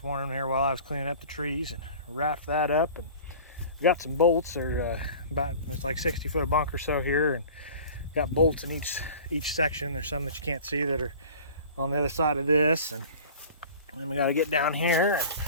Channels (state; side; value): inverted; both; correlation -0.42